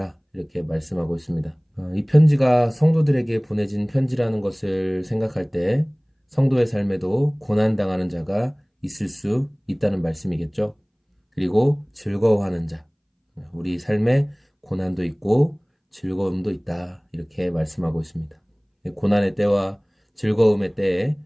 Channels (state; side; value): identical; both; correlation 1.00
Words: 이렇게 말씀하고 있습니다. 이 편지가 성도들에게 보내진 편지라는 것을 생각할 때 성도의 삶에도 고난당하는 자가 있을 수 있다는 말씀이겠죠. 그리고 즐거워하는 자, 우리 삶에 고난도 있고 즐거움도 있다. 이렇게 말씀하고 있습니다. 고난의 때와 즐거움의 때에